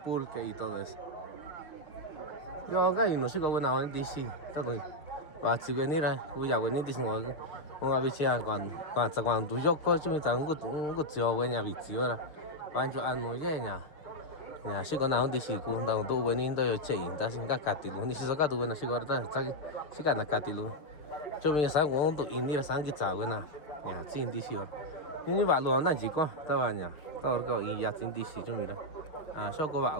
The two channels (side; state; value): right; late; 6.1 ms